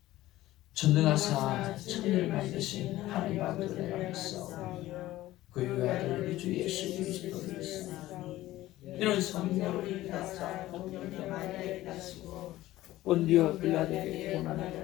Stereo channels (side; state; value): right; quieter; 16.0 dB